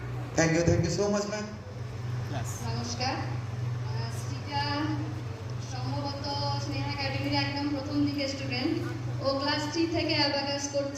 Thank you so much ma'am. নমস্কার। শ্রীজা সম্ভবত স্নেহা একাডেমির একদম প্রথম দিকে স্টুডেন্ট। ও ক্লাস 3 থেকে অ্যাবাকাস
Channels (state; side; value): identical; both; correlation 1.00